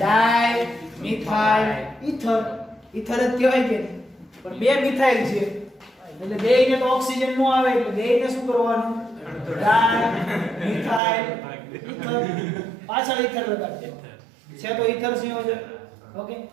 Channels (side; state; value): left; drops out; at 11.0 s